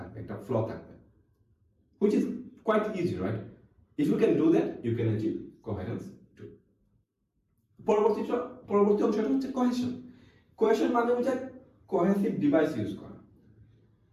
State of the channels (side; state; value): both; identical; correlation 1.00